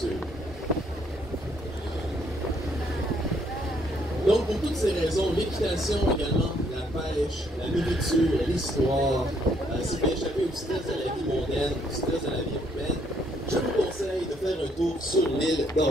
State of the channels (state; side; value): normal; both; correlation 0.69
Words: Donc, pour toutes ces raisons, l'équitation également, la pêche, la nourriture, l'histoire, c'est d'échapper au stress de la vie mondaine, au stress de la vie urbaine, je vous conseille de faire un tour sur l'île